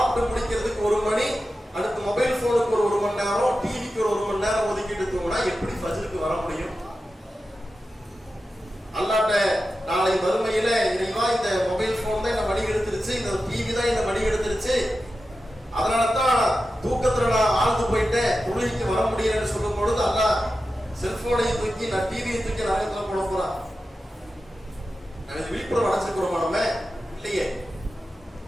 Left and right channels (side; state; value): both; normal; correlation 0.92